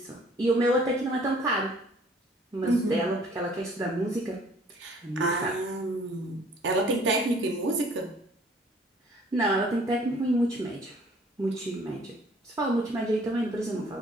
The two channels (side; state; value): both; normal; correlation 0.56